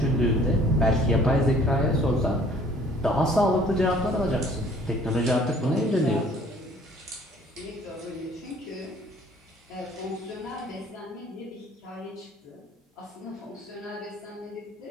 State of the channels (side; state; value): both; normal; correlation 0.55